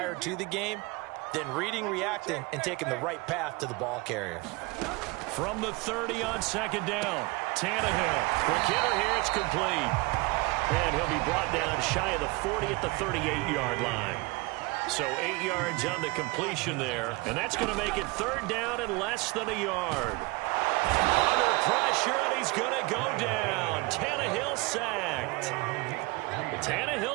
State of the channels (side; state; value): left; quieter; 25.1 dB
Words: to the game, then reading, reacting, and taking the right path to the ball carrier. From the 30 on second down, Tannehill. Quick hitter here, it's complete. And he'll be brought down shy of the 40 at the 38-yard line. So 8 yards on the completion there, and that's going to make it third down and less than a yard. Under pressure, and he's going to go down. Tannehill sacked.